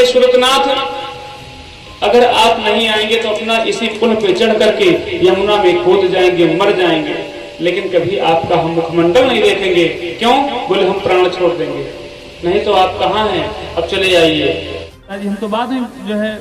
सुरतनाथ, अगर आप नहीं आएंगे तो अपना इसी पुल पे चढ़ करके यमुना में कूद जाएंगे, मर जाएंगे, लेकिन कभी आपका हम मुखमंडल नहीं देखेंगे। क्यों? बोले हम प्राण छोड़ देंगे। नहीं तो आप कहाँ हैं, अब चले जाइए। हम तो बाद में जो है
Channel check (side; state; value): both; identical; correlation 1.00